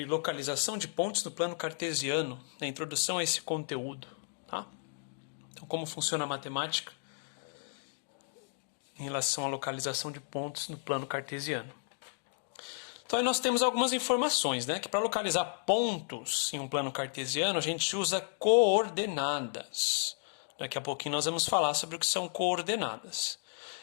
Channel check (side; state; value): right; silent; digital silence